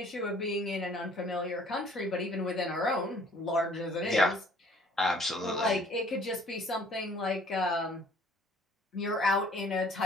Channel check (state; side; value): normal; both; correlation 0.56